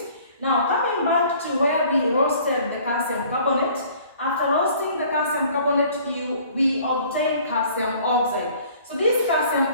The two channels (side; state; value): both; inverted; correlation -0.53